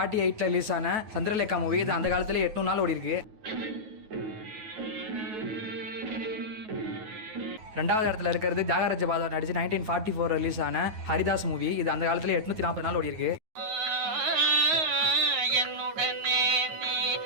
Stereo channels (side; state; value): left; late; 9.4 ms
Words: ரிலீஸ் ஆன சந்திரலேகா மூவி. இது அந்த காலத்துல 800 நாள் ஓடி இருக்கு. 2வது இடத்துல இருக்கிறது தியாகராஜ பாதர் நடிச்சு 1944 ரிலீஸ் ஆன ஹரிதாஸ் மூவி. இது அந்த காலத்துல 840 நாள் ஓடி இருக்கு.